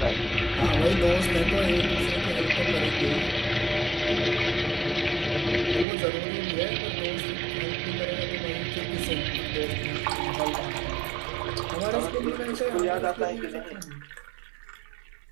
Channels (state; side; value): drops out; left; at 5.9 s